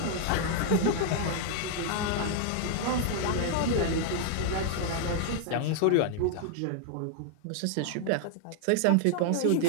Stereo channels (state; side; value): different; both; correlation 0.00